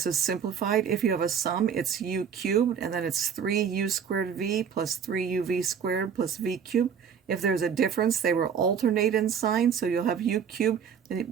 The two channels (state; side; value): quieter; left; 7.3 dB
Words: is simplified. If you have a sum, it's u cubed, and then it's 3u squared v plus 3uv squared plus v cubed. If there's a difference, they will alternate in sign, so you'll have u cubed, and